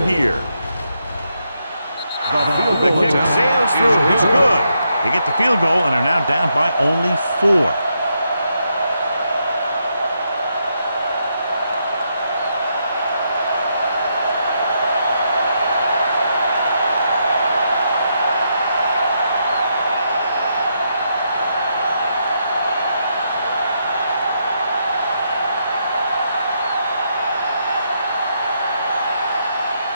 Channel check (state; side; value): inverted; both; correlation -0.80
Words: The kick sails through. It's good. They get the field goal and are now down by only 4.